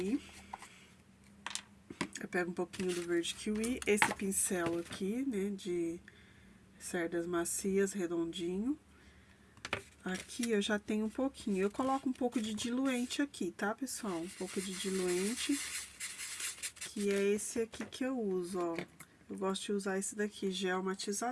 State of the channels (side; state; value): both; identical; correlation 1.00